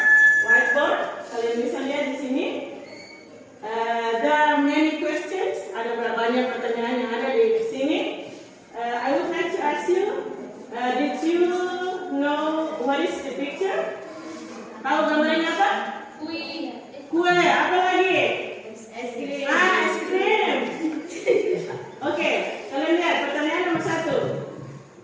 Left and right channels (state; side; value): identical; both; correlation 1.00